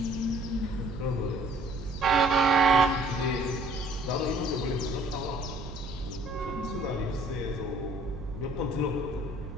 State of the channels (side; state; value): right; noise; hum, 11 dB below the sound